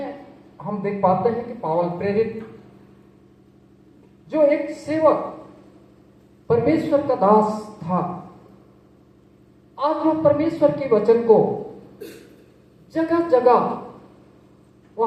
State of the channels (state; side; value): identical; both; correlation 1.00